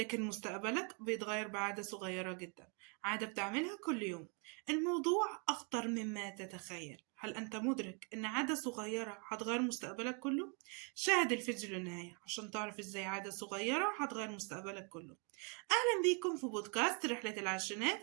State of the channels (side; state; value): left; quieter; 36.4 dB